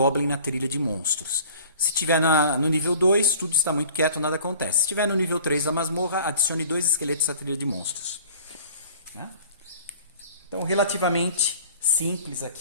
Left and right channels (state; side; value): inverted; both; correlation -0.48